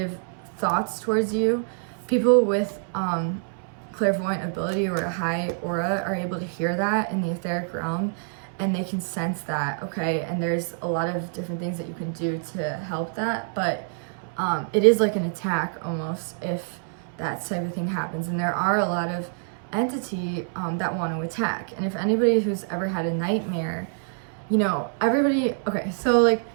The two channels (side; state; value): left; silent; 61 dB below the other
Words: thoughts towards you, people with clairvoyant ability or a high aura are able to hear that in the etheric realm, and they can sense that, okay? And there's a lot of different things that you can do to help that, but it is like an attack almost if that type of thing happens. And there are a lot of entity that want to attack. And if anybody who's ever had a nightmare, you know, everybody, okay, so like